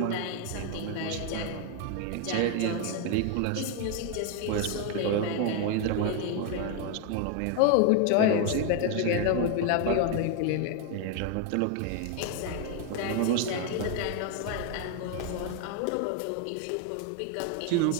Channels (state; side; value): different; both; correlation 0.01